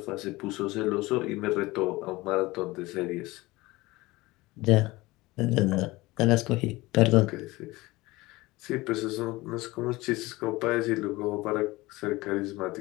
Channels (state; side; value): quieter; right; 20.6 dB